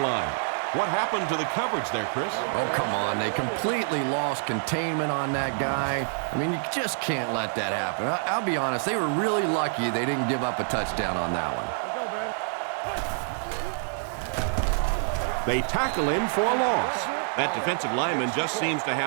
line. What happened to the coverage there, Chris? Oh, come on. They completely lost containment on that guy. I mean, you just can't let that happen. I'll be honest, they were really lucky they didn't give up a touchdown on that one. They tackle him for a loss. That defensive lineman just seems to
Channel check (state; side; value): silent; left; 60 dB below the other